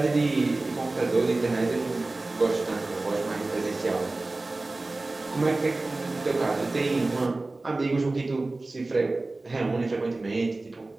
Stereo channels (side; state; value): left; quieter; 3.1 dB